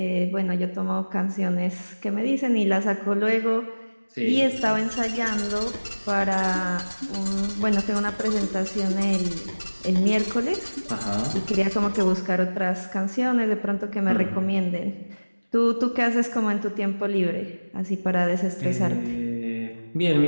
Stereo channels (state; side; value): inverted; both; correlation -1.00